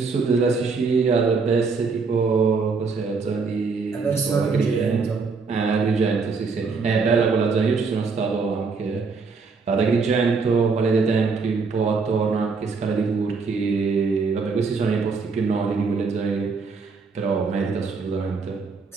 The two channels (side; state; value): left; quieter; 4.7 dB